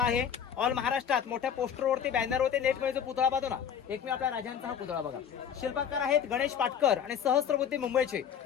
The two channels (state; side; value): quieter; right; 8.1 dB